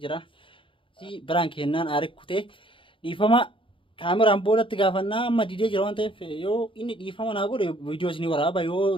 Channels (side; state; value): right; late; 0.25 ms